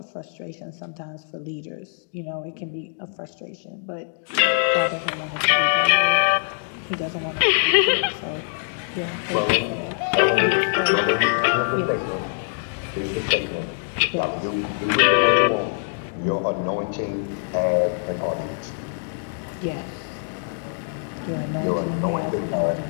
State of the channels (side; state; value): right; silent; digital silence